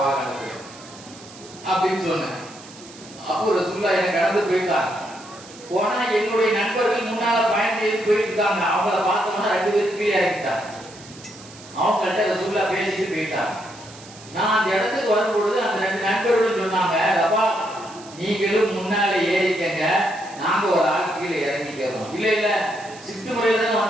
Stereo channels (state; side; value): noise; right; hiss, 19 dB below the sound